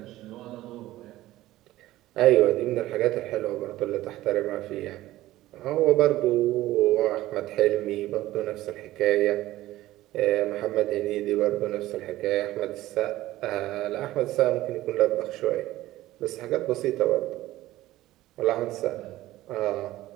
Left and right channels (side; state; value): left; quieter; 16.1 dB